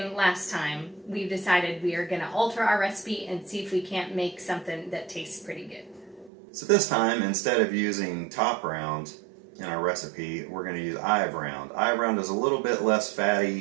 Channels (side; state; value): left; drops out; at 6.3 s